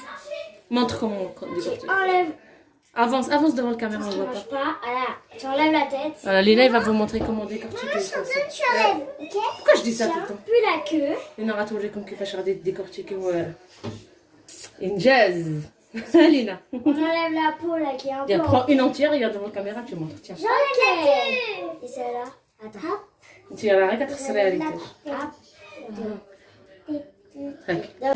Montre comment on Tu décortique. enlèves. Avance devant la caméra, on voit pas. Voilà. Tu enlèves la tête. Voilà, Lina, il va vous montrer comment décortiquer les poissons. Tu enlèves. Ok. Pourquoi je dis ça tout le temps? Puis la queue. Lina va toujours comme qu'il faut faire décortiquer. Une jazz. Lina. On enlève la peau là qui est un peu. Viens, prends une entière, regarde devant la caméra, tu montres. Tiens. J'enlève la queue. Et celle-là. Attends. Tu vas arrêter de se réaliser.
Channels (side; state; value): both; identical; correlation 1.00